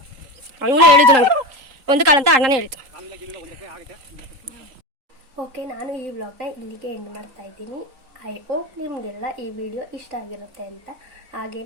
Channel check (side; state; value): left; late; 3.7 ms